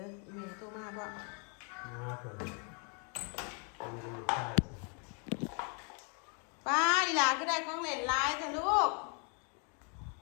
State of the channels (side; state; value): right; quieter; 39.1 dB